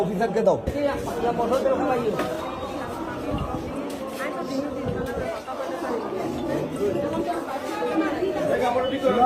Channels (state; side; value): identical; both; correlation 1.00